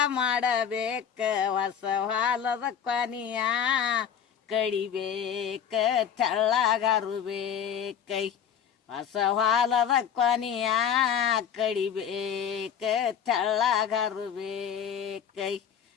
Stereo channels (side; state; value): right; quieter; 8.3 dB